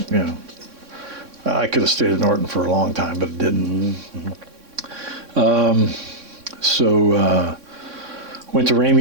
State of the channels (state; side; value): late; left; 3.6 ms